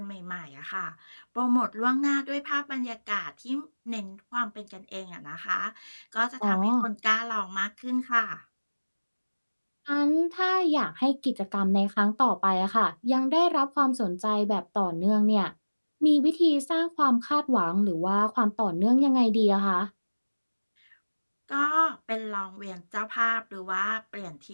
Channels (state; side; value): inverted; both; correlation -1.00